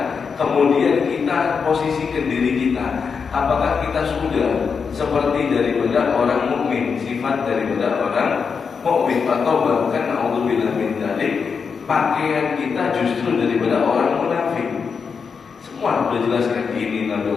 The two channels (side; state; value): right; quieter; 5.8 dB